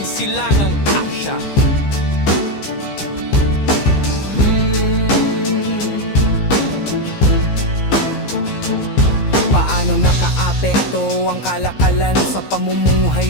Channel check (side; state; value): right; late; 15 ms